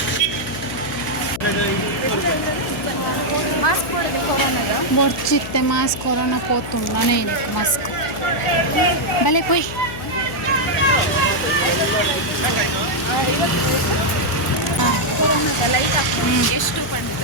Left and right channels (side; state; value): left; noise; hum, 11 dB below the sound